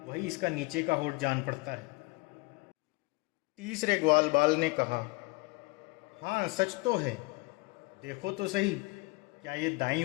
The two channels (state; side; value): quieter; right; 25.5 dB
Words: वही इसका नीचे का होठ जान पड़ता है। तीसरे ग्वाल बाल ने कहा, हाँ सच तो है, देखो तो सही, क्या ये दाईं